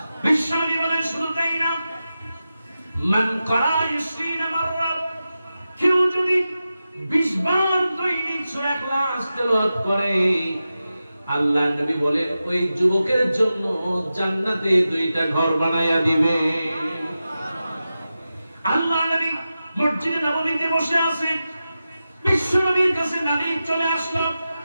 বিশ্বনবী বলেন, শুধু তাই না, মান কারা 20 মাররা, কেউ যদি 20 বার দৈনিক সূরা ইখলাস তেলাওয়াত করে, আল্লাহ নবী বলে ওই যুবকের জন্য জান্নাতে 2টা ঘর বানাইয়া দিবে। আল্লাহ নবী মসজিদে নববীতে বসে আছে, বিশ্বনবীর কাছে নবী চলে আসলো।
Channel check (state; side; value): inverted; both; correlation -0.92